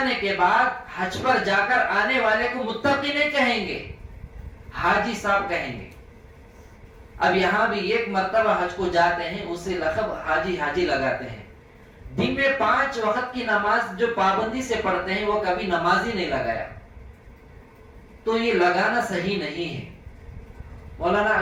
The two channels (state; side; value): identical; both; correlation 1.00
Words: کے بعد حج پر جا کر آنے والے کو متقی نہیں کہیں گے، حاجی صاحب کہیں گے۔ اب یہاں بھی ایک مرتبہ حج کو جاتے ہیں اسے لقب حاجی حاجی لگاتے ہیں. دن میں 5 وقت کی نماز جو پابندی سے پڑھتے ہیں وہ کبھی نماز ہی نہیں لگایا. تو یہ لگانا صحیح نہیں ہے. مولانا